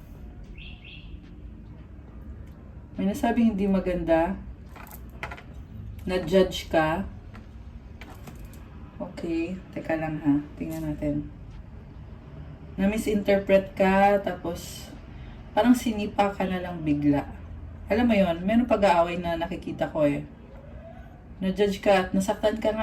May nasabing hindi maganda. Na-judge ka. Okay, teka lang ha. Tingnan natin. Na-misinterpret ka, tapos parang sinipa ka na lang bigla. Alam mo yon, meron pag-aaway na nakikita ko eh. Na-judge ka at nasaktan ka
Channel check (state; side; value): identical; both; correlation 1.00